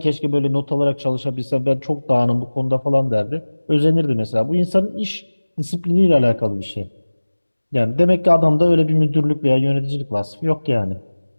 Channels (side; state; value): both; inverted; correlation -1.00